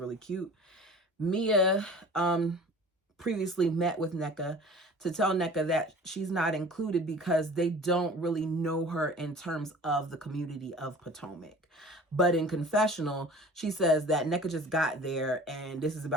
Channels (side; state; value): both; normal; correlation 0.43